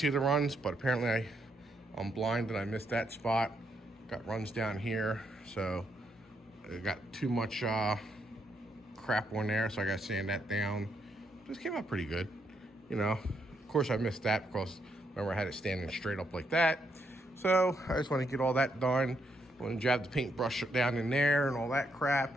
the runs, but apparently I'm blind and I missed that spot. Got runs down here, so I got too much crap on there, so I gotta sand that down. Just came out pretty good, you know. Of course I missed that because remember I had it standing straight up like that. So I just want to get all that done. I want to jab the paintbrush down in there and all that crap.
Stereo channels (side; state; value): both; normal; correlation 0.77